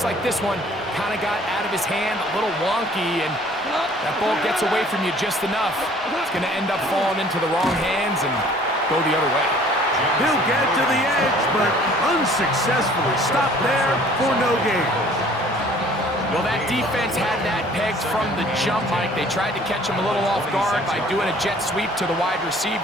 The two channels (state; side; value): normal; both; correlation 0.54